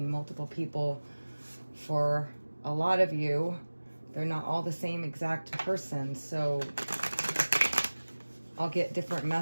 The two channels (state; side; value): inverted; both; correlation -1.00